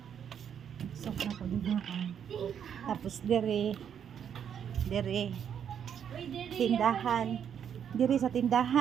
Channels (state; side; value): quieter; left; 8.4 dB